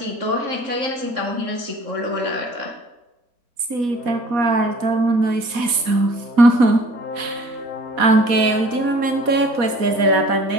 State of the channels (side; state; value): left; late; 4.1 ms